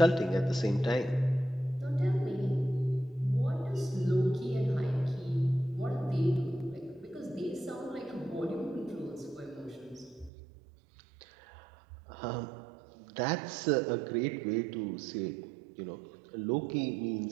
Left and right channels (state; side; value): drops out; left; at 10.3 s